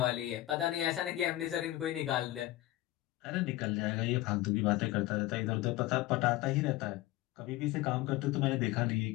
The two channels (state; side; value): quieter; right; 16.5 dB